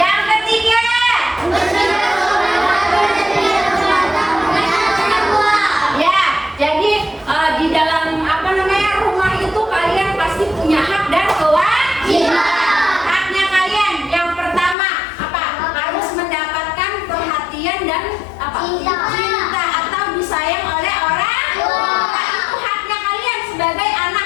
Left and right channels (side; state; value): right; drops out; at 14.8 s